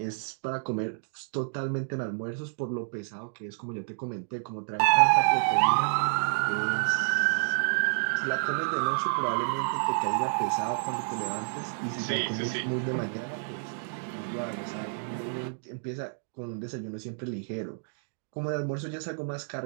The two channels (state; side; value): silent; left; digital silence